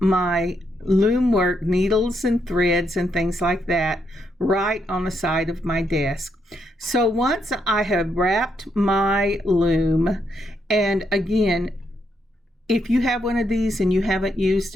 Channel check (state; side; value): normal; both; correlation 0.78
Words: my loom work, needles and threads and things like that, right on the side of my desk. So once I have wrapped my loom, and again, if you have one of these and you haven't used